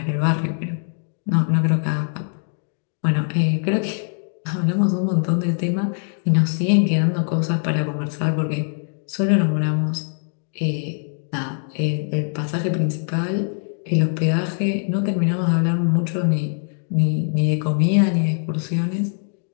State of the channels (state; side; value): silent; right; 64 dB below the other